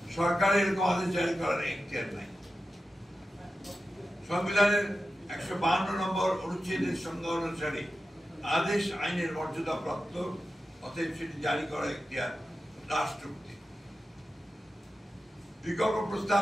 সরকারের এরকম আদেশ জারি করার এখতিয়ার নাই। সংবিধানের 152 নম্বর অনুচ্ছেদের সংজ্ঞা অনুসারে আদেশ আইনের মর্যাদা প্রাপ্ত, অতএব সেটি জারি করার এখতিয়ার রাষ্ট্রপতি। বিকল্প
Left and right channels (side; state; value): both; normal; correlation 0.92